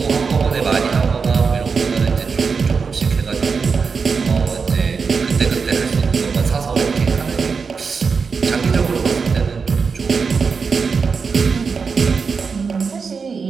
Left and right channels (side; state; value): left; quieter; 5.3 dB